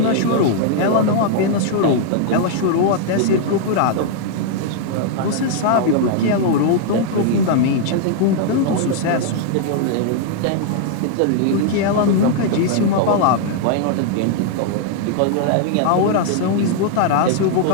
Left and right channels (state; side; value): different; both; correlation -0.01